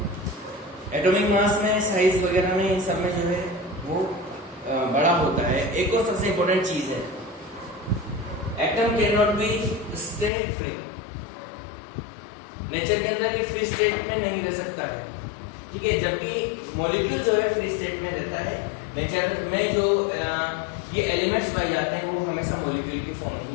एटॉमिक मास में, साइज वगैरह में, इन सब में जो है वो बड़ा होता है। एक और सबसे इंपॉर्टेंट चीज है, atom can not be stay free. Nature के अंदर ये फ्री स्टेट में नहीं रह सकता है, ठीक है, जबकि मॉलिक्यूल जो है फ्री स्टेट में रहता है। नेचर में जो ये एलिमेंट्स पाए जाते हैं वो हमेशा मॉलिक्यूल की फॉर्म में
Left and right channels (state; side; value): drops out; right; at 10.3 s